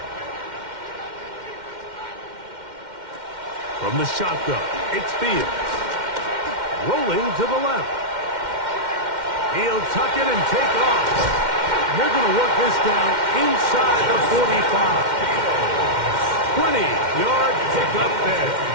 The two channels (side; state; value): left; late; 2.1 ms